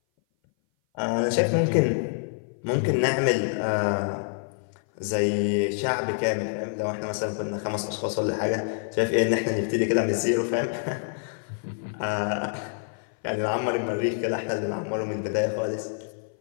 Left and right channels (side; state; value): right; silent; 57 dB below the other